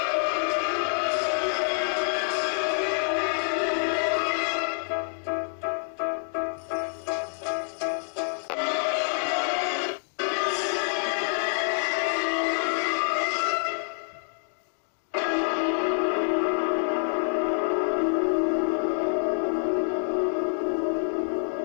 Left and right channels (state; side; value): silent; right; digital silence